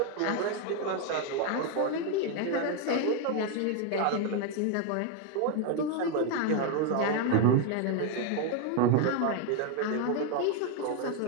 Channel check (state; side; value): different; both; correlation 0.01